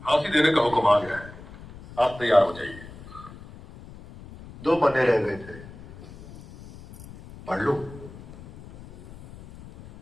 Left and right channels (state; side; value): noise; left; rumble, 17 dB below the sound